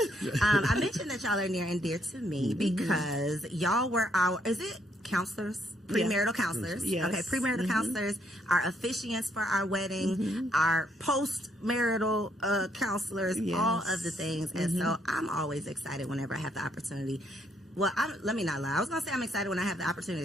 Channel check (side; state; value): both; normal; correlation 0.72